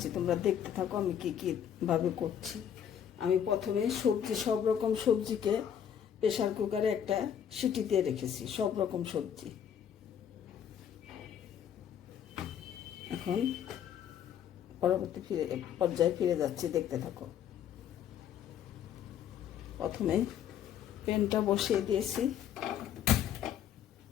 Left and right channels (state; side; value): quieter; right; 9.1 dB